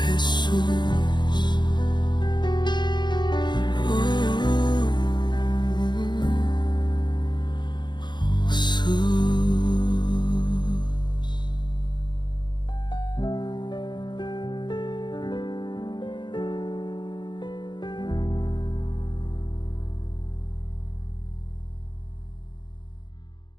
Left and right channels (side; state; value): right; late; 0.22 ms